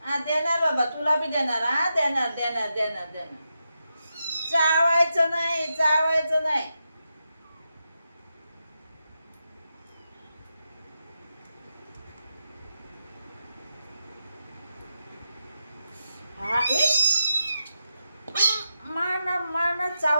देणार बाबा, तुला बी देणार. देणार देणार देणार देणार. चावायचं नाही, चावायचं नाही. मारणार मारणार.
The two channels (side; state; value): both; inverted; correlation -0.87